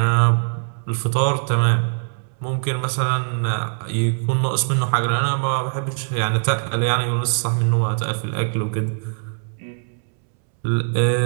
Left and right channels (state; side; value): silent; left; 65 dB below the other